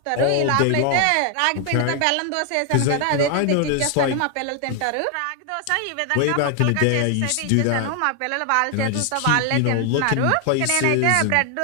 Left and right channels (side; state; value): both; different; correlation 0.00